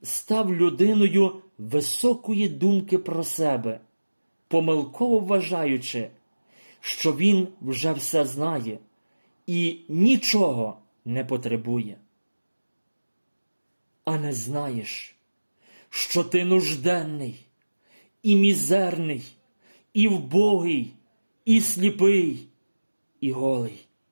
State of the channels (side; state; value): both; inverted; correlation -1.00